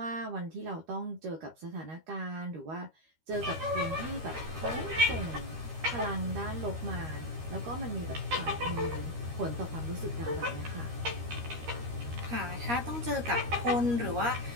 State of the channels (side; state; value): left; late; 13 ms